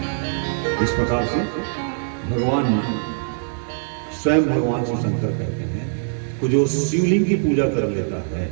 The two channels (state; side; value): silent; left; 64 dB below the other